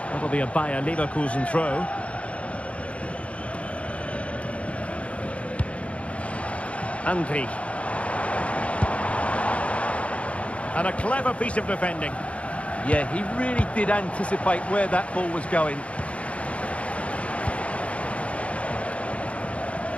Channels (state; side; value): late; right; 0.063 ms